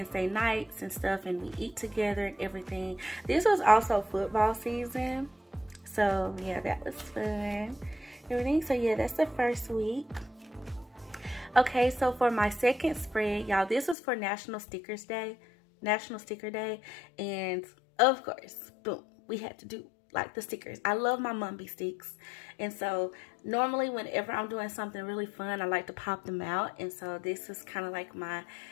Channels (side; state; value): right; drops out; at 14.0 s